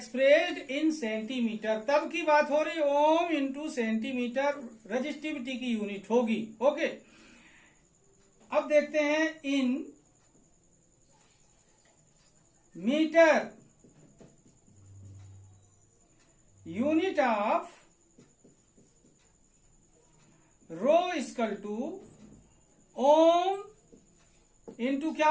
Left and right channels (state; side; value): identical; both; correlation 1.00